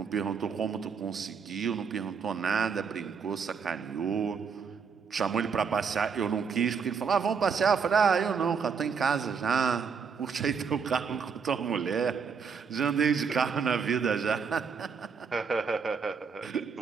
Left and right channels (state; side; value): quieter; left; 6.0 dB